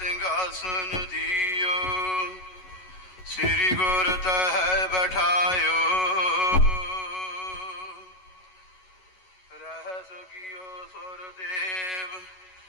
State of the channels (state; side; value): late; right; 11 ms